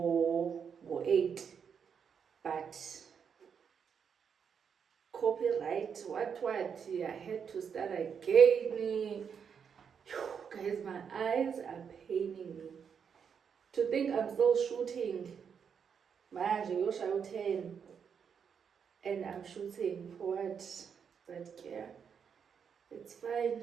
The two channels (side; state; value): left; quieter; 7.0 dB